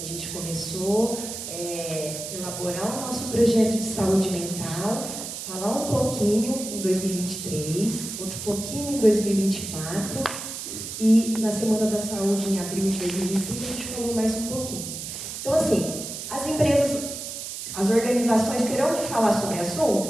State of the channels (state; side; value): noise; right; hiss, 7 dB below the sound